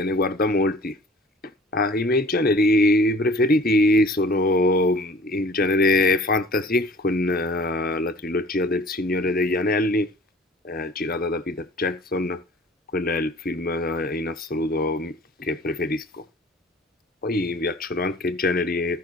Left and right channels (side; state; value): both; normal; correlation 0.48